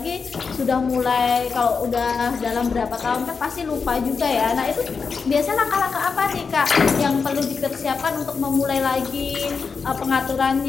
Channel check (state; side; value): quieter; right; 5.3 dB